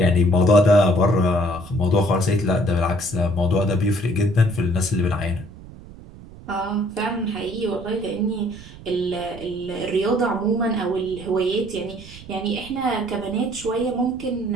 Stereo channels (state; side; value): noise; right; rumble, 17 dB below the sound